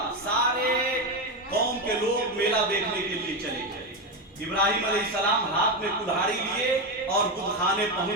سارے قوم کے لوگ میلہ دیکھنے کے لیے چلے گئے. ابراہیم علیہ السلام ہاتھ میں کلہاڑی لیے اور بت خانے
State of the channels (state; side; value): normal; both; correlation 0.12